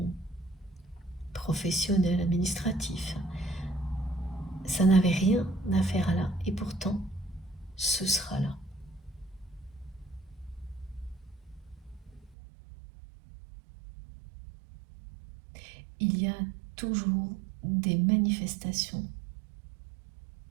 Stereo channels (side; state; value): left; drops out; at 12.4 s